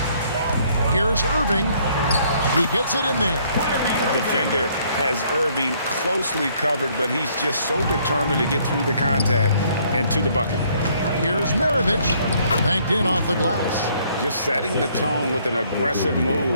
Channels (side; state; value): both; inverted; correlation -0.65